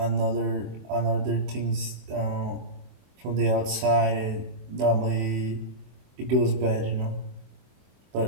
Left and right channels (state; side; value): late; left; 23 ms